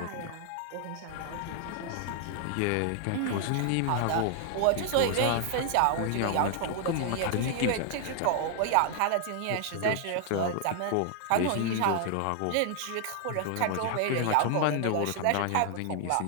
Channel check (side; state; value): both; different; correlation 0.00